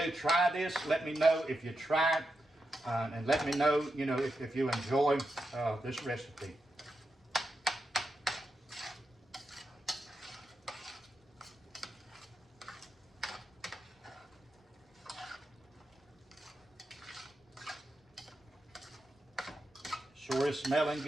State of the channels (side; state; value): both; normal; correlation 0.87